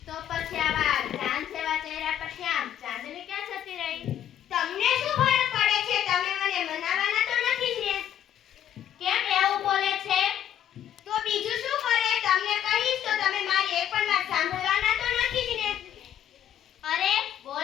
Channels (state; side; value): quieter; right; 10.5 dB